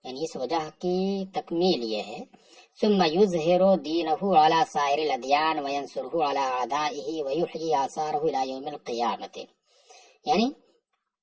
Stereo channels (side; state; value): both; identical; correlation 1.00